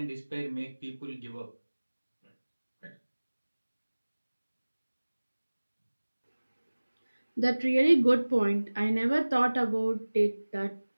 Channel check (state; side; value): inverted; both; correlation -1.00